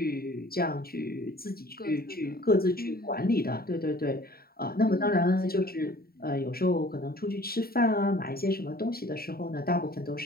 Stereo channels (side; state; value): right; late; 0.44 ms